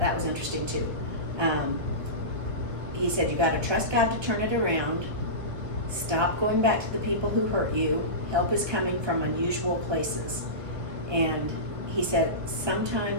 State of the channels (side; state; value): left; late; 1.4 ms